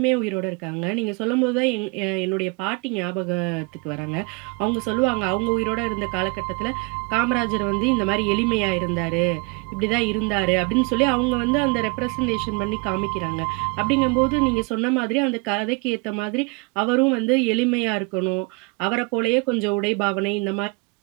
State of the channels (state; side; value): quieter; left; 30.2 dB